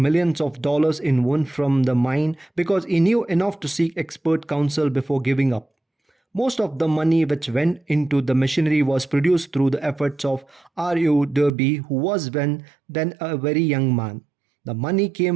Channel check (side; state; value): left; drops out; at 11.5 s